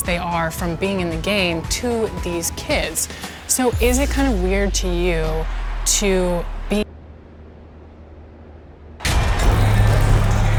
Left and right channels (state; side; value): identical; both; correlation 1.00